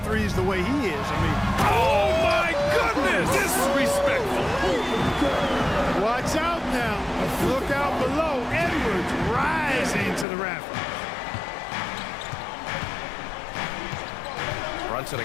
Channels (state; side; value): drops out; right; at 10.2 s